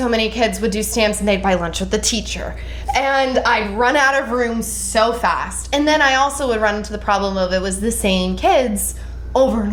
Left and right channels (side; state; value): both; identical; correlation 1.00